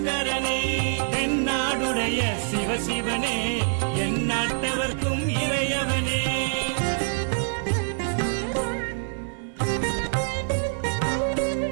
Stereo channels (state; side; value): silent; left; digital silence